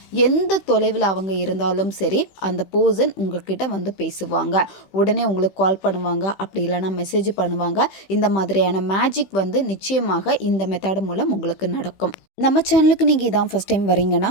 எந்த தொலைவில் அவங்க இருந்தாலும் சரி, அந்த பர்சன் உங்ககிட்ட பேசுவாங்க. உடனே உங்களுக்கு கால் பண்ணுவாங்க, அப்படி இல்லைன்னா மெசேஜ் பண்ணுவாங்க. இந்த மாதிரியான மேஜிக் நிச்சயமாக இந்த மெத்தட் மூலம் உங்களுக்கு நடக்கும். நம்ம சேனலுக்கு நீங்கள் இதான் ஃபஸ்ட் டைம் வரீங்கன்னா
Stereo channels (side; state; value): right; late; 15 ms